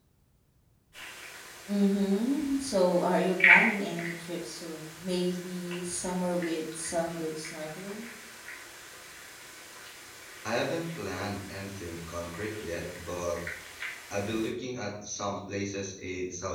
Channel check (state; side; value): identical; both; correlation 1.00